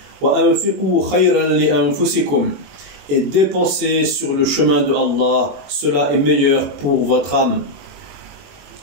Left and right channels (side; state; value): left; late; 21 ms